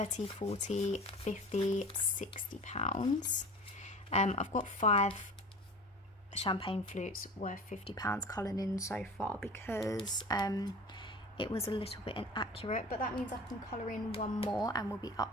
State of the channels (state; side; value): normal; both; correlation 0.37